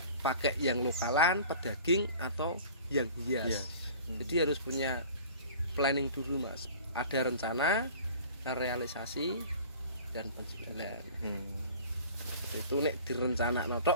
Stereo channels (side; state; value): both; inverted; correlation -0.44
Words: pakai yang lokalan, pedaging atau yang hias. Jadi harus punya planning dulu Mas. Ada rencana, realisasi, dan penjualan. Itu nek direncanakno